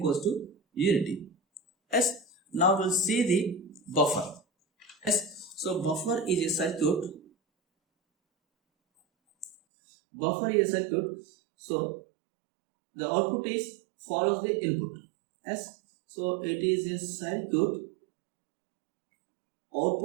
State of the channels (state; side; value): drops out; left; at 9.6 s